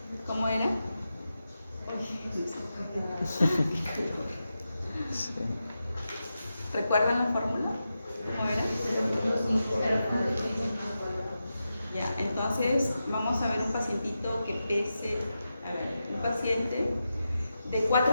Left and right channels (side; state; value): both; inverted; correlation -0.90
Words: ¿Cómo era? Sí. ¿Recuerdan la fórmula? ¿Cómo era? Ya, entonces vamos a ver un pacientito que pese, un paciente de